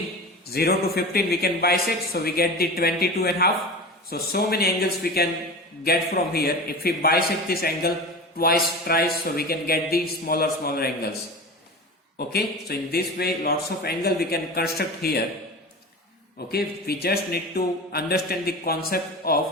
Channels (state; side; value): normal; both; correlation 0.31